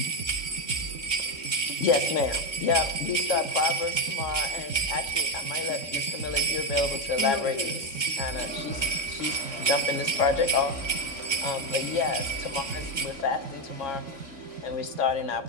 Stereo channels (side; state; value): right; late; 3.6 ms